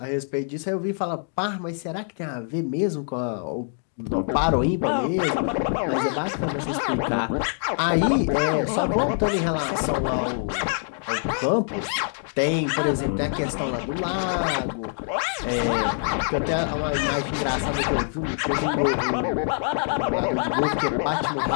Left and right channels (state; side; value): silent; right; 56 dB below the other